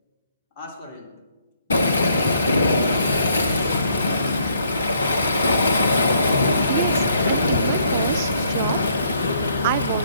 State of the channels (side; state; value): both; inverted; correlation -0.67